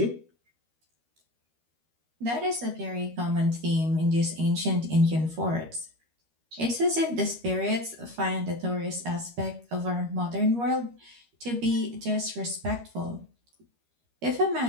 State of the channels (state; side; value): late; left; 13 ms